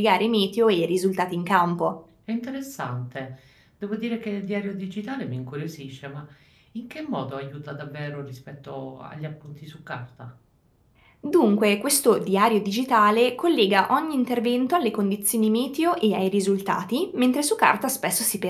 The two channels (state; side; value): identical; both; correlation 1.00